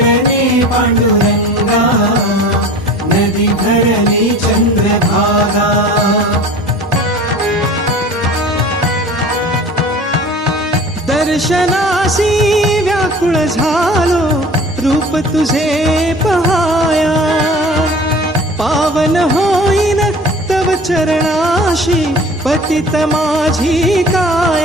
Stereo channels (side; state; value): both; normal; correlation 0.42